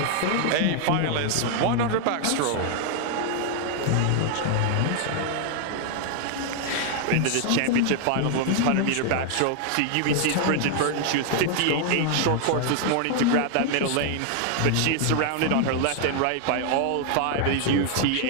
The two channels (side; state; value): both; different; correlation 0.00